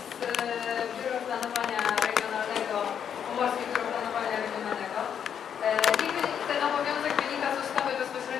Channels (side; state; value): right; quieter; 8.3 dB